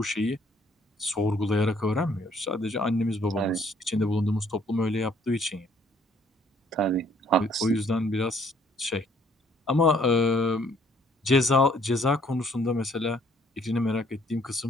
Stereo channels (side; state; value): both; normal; correlation 0.63